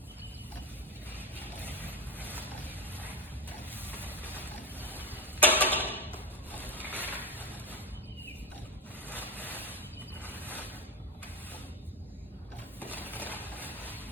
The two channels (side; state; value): both; normal; correlation 0.19